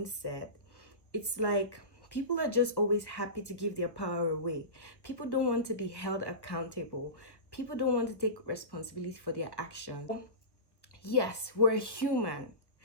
it's like people are just always happy to give their power away. People don't want to be held accountable. People don't want to take responsibility for their actions. Yes, we're human.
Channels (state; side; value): late; right; 1.1 ms